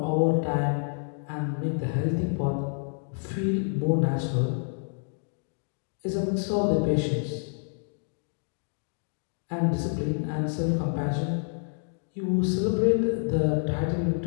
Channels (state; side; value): silent; right; 59 dB below the other